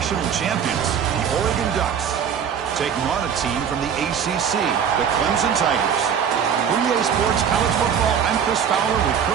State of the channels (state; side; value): quieter; left; 7.8 dB